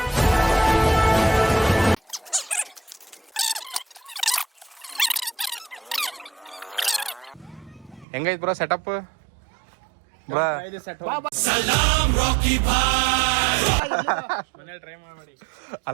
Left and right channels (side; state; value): left; drops out; at 8.1 s